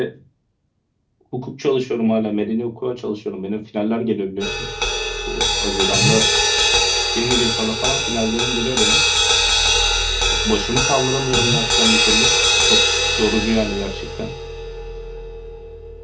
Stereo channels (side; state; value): both; identical; correlation 1.00